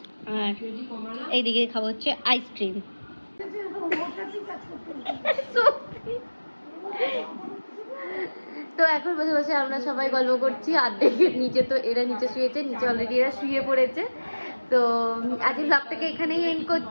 আর এইদিকে খাবো হচ্ছে আইসক্রিম। তো এখন বসে বসে আমরা সবাই গল্প করছি, অর্ধেকের নিচে, তো এরা নিচে শুয়েছে, নিচে অলরেডি এরা শুয়ে পড়েছে। তো আজকে ব্লগটাকে এখানেই এন্ড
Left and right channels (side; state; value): both; inverted; correlation -1.00